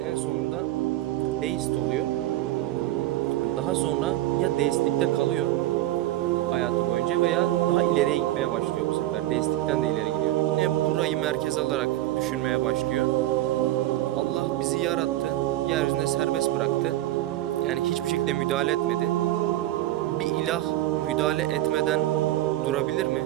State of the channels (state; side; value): quieter; left; 15.0 dB